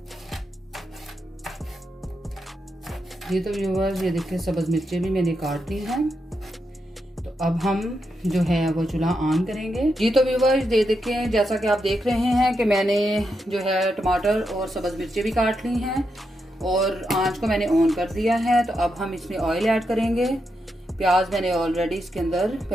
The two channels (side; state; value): both; normal; correlation 0.84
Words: ये तो व्यूअर्स ये देखिए सब्ज़ मिर्चें भी मैंने काट ली हैं। तो अब हम जो है वो चूल्हा ऑन करेंगे। जी तो व्यूअर्स ये देखें, जैसा कि आप देख रहे हैं कि मैंने जो है टमाटर और सब्ज़ मिर्चें भी काट ली हैं और आंच को मैंने ऑन कर दिया है। तो अब हम इसमें ऑयल ऐड करेंगे। प्याज मैंने ऑलरेडी इसके अंदर